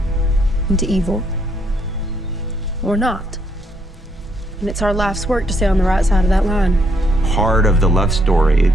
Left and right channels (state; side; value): normal; both; correlation 0.72